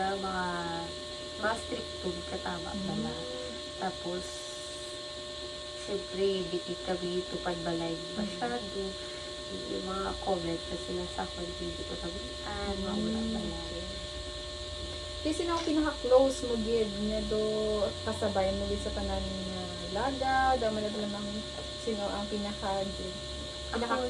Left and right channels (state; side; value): identical; both; correlation 1.00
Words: mga stricto katama pala. Tapos, syempre, di kami tupad balay masyado. Yung mga comment na sila sa akin, hindi ko tabihan, mawala balay. Kasi sino ang pinaka-close mo, Gid, na do kasabay mo sa tanan na laga, daw man na lang sino ang pinaka-Gid?